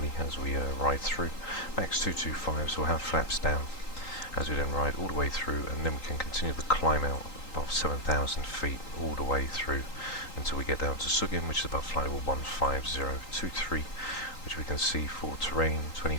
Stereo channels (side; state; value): right; late; 3.8 ms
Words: as we ride through. Max 225, so we'll have flaps down as we then ride all the way through, and then we can continue the climb out above 7,000 feet all the way through until we get down to Sugin, which is above flight level 15023, which we can see for terrain